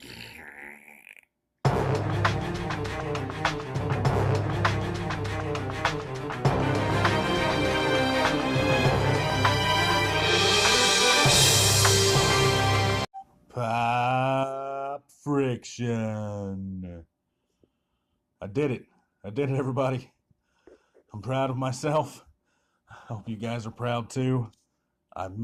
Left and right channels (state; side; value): identical; both; correlation 1.00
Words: Pop friction. I did it. I did it, everybody. I'm proud of myself. I hope you guys are proud too. I